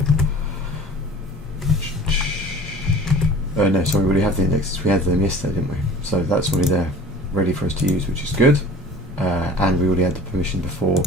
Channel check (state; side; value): normal; both; correlation 0.44